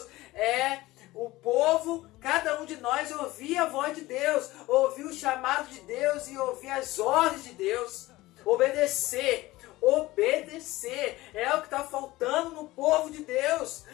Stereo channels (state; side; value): quieter; right; 18.6 dB